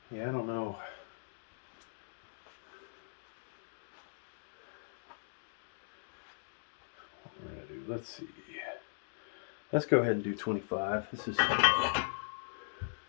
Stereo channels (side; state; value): right; silent; digital silence